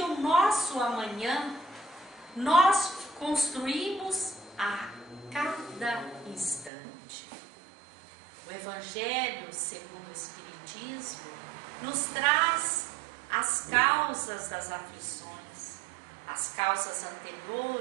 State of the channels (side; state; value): left; drops out; at 6.7 s